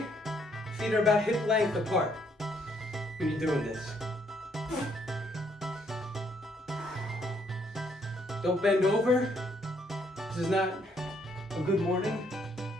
feet are about hip length apart when you're doing this. Don't bend over. This is not a good morning.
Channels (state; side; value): normal; both; correlation 0.70